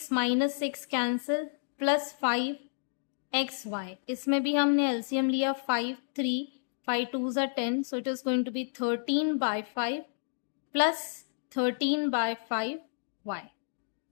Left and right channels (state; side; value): silent; right; digital silence